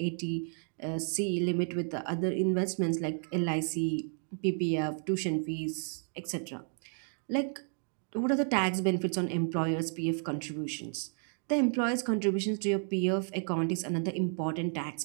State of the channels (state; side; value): silent; left; 56 dB below the other